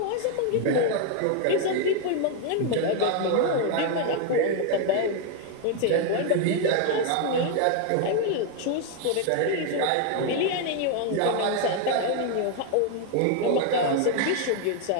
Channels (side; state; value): both; different; correlation 0.00